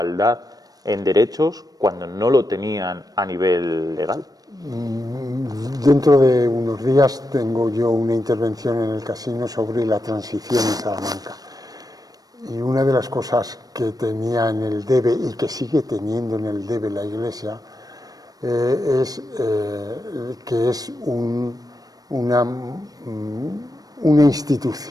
en derechos cuando no lo tenían a nivel legal. Dentro de unos días tengo yo una intervención en el casino sobre la transición en Salamanca. Y una de las cosas que tenía en el debe y que sigue teniendo en el debe la Iglesia es que es una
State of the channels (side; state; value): left; late; 0.18 ms